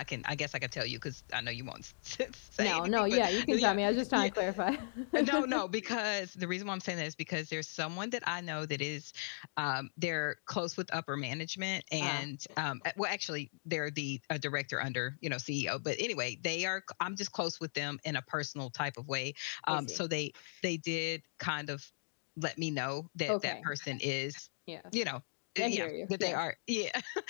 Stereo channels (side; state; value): right; silent; digital silence